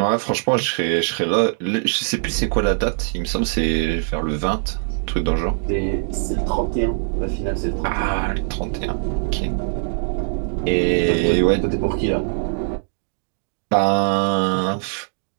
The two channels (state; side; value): silent; left; digital silence